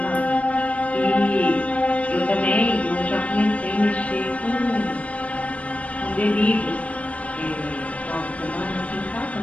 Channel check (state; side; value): late; right; 0.065 ms